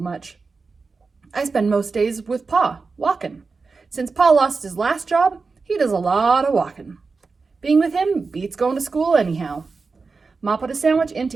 I spend most days with Pa, walking. Since Pa lost his last job, he does a lot of walking. Being with him beats going to school anyhow. Ma put a sandwich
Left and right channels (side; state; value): left; quieter; 4.4 dB